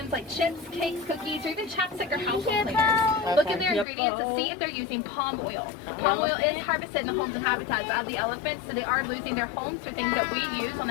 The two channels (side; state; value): right; drops out; at 3.9 s